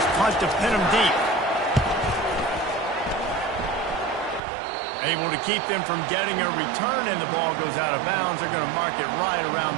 punt to pin them deep. Able to keep them from getting a return, and the ball goes out of bounds. They're going to mark it right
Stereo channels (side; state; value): left; drops out; at 4.4 s